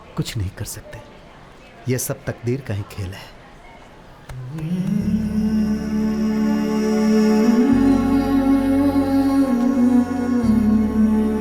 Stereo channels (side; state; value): both; identical; correlation 1.00